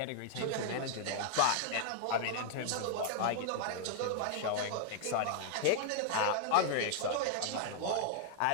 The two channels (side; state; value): both; different; correlation -0.01